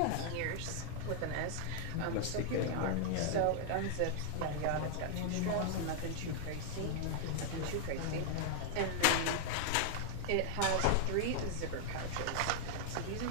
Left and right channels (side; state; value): both; different; correlation -0.01